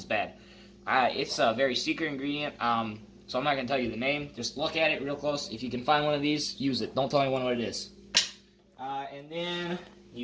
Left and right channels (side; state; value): both; identical; correlation 1.00